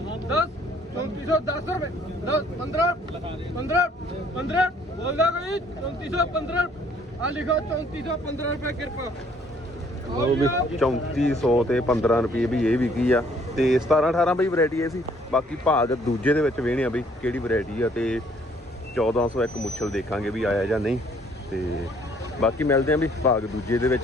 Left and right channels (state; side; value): normal; both; correlation 0.62